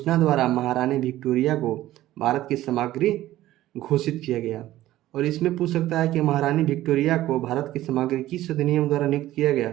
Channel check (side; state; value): left; quieter; 14.9 dB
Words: द्वारा महारानी विक्टोरिया को भारत की सामग्री घोषित किया गया। और इसमें पूछ सकता है कि महारानी विक्टोरिया को भारत की सामग्री किस अधिनियम द्वारा नियुक्त किया गया,